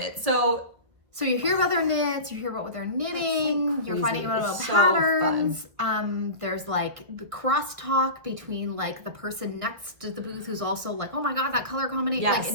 So you hear about their knits, you hear about what they're knitting, so you're finding out about so patterns. There's the crosstalk between the person next to the booth who's also oh my god, that color combination.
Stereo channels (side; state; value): left; late; 1.5 ms